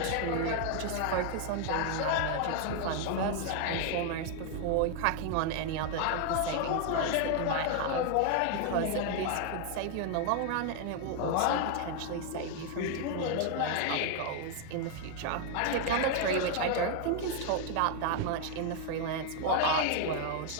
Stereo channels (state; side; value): different; both; correlation 0.00